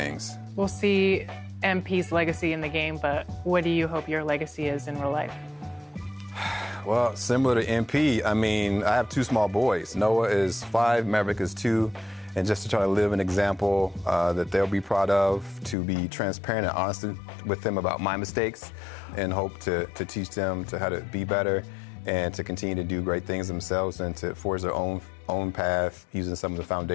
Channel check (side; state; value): right; drops out; at 15.8 s